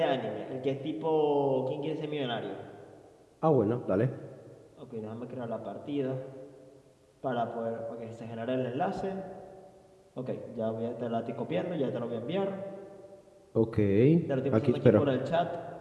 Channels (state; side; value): identical; both; correlation 1.00